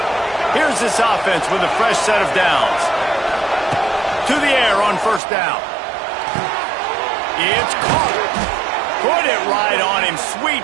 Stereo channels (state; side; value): drops out; left; at 5.2 s